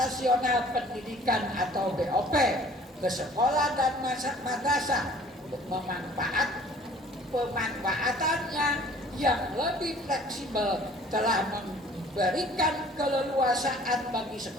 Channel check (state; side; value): normal; both; correlation 0.52